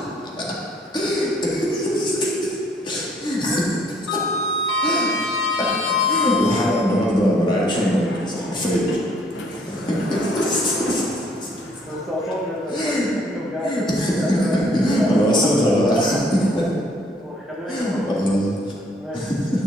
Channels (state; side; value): normal; both; correlation 0.63